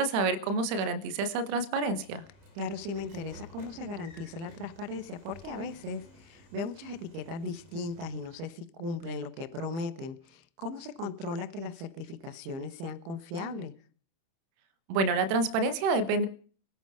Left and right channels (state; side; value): late; left; 31 ms